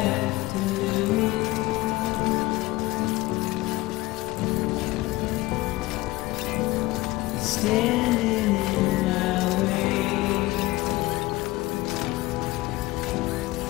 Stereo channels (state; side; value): quieter; right; 19.2 dB